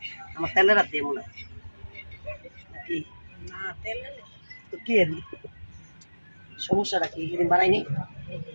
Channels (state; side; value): inverted; both; correlation -1.00